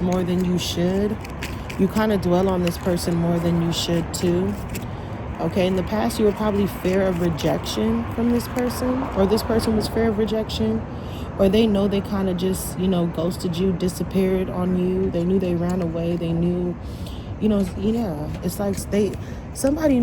more than you should. You kind of dwell on this person more than you should too. Okay, in the past, you were probably fear of rejection from this person, or this person was fear of rejection, or they know they kind of just, you know, ghosted you, disappeared on you. They knew they ran away. They knew, you know, yeah. It's like somebody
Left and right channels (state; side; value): identical; both; correlation 1.00